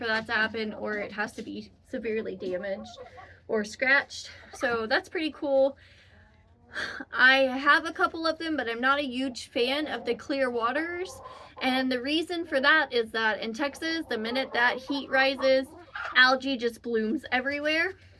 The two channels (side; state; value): both; identical; correlation 1.00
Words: that to happen, or it has to be severely damaged or scratched. So that's pretty cool. I have a couple of them, but I'm not a huge fan of the clear waters. And the reason for that is that in Texas, the minute that heat rises, algae just blooms everywhere